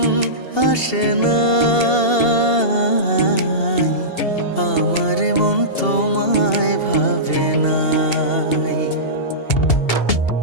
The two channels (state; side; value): late; right; 2.8 ms